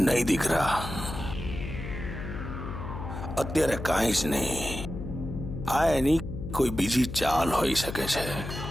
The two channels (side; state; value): left; noise; hum, 8 dB below the sound